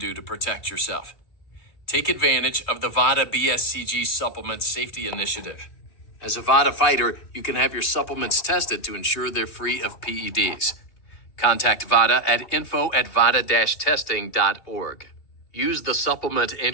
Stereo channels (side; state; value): right; late; 2.7 ms